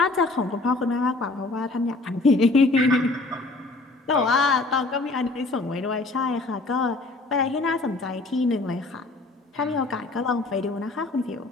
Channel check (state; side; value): quieter; right; 3.2 dB